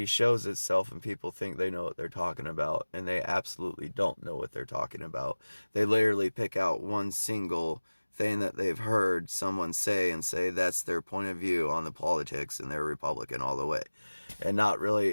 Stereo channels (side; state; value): both; inverted; correlation -1.00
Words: shows itself and people think they know what they're talking about, and they absolutely don't know what they're talking about. They literally pick out one single thing that they've heard someone say and say that's their point of view on the politics, and they're Republican all the way, and not